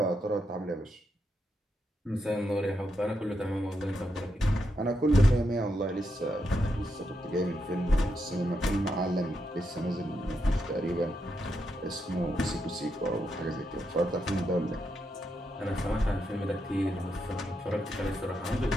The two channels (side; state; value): both; normal; correlation 0.82